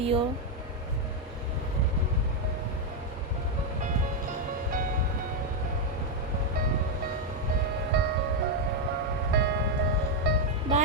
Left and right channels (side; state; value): both; normal; correlation 0.02